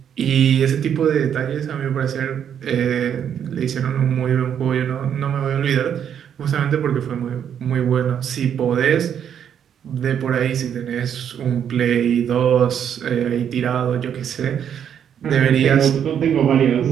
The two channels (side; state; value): left; quieter; 8.7 dB